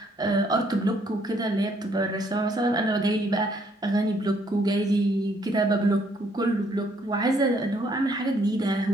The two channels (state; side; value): normal; both; correlation 0.67